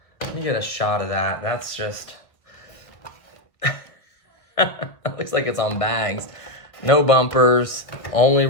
Let me get a shot of that. That's just... It looks like it's on bags. No bumpers. Only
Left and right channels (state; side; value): late; right; 1.5 ms